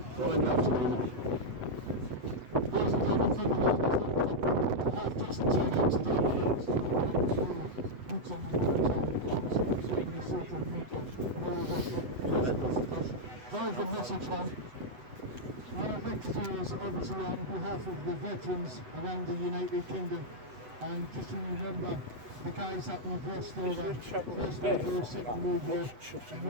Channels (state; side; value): late; left; 8.0 ms